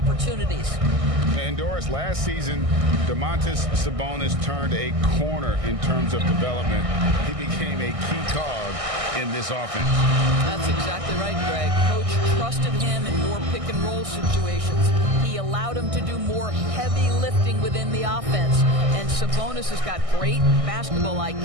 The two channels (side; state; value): left; late; 1.6 ms